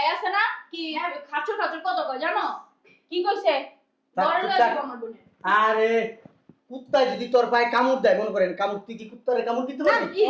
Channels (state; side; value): identical; both; correlation 1.00